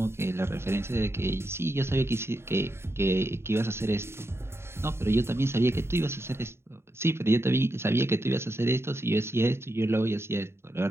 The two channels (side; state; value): left; late; 0.12 ms